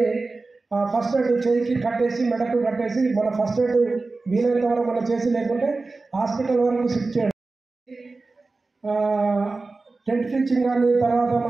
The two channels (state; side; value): quieter; left; 3.6 dB